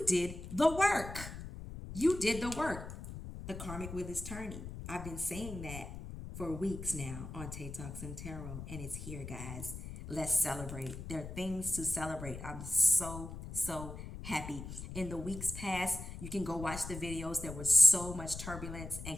did the work. You did the work. The karmic wheel is turning. I've been saying that for weeks now on Tay Talks and Tarot, and it's here, guys. Let's celebrate. There are things to celebrate. I'm so happy. In the weeks past, you can go watch the videos. There was so much turbulence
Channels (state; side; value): noise; left; rumble, 9 dB below the sound